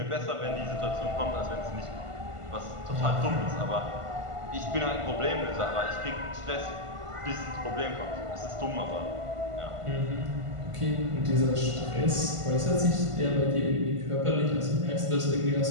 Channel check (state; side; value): late; left; 1.5 ms